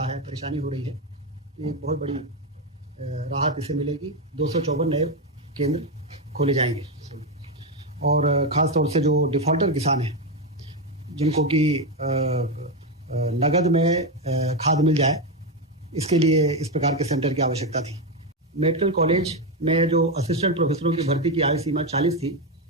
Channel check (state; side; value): normal; both; correlation 0.09